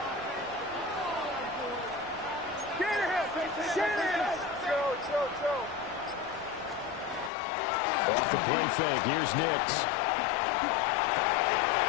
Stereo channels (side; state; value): right; drops out; at 7.3 s